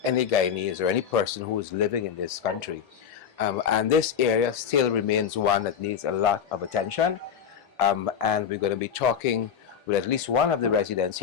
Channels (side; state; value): right; quieter; 7.8 dB